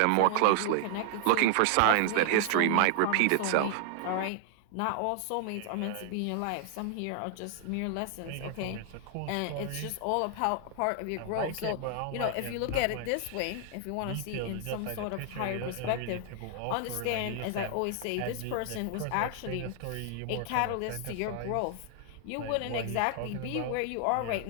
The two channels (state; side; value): different; both; correlation -0.01